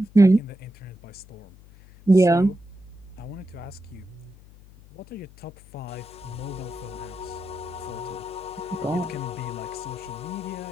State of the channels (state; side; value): noise; left; hum, 22 dB below the sound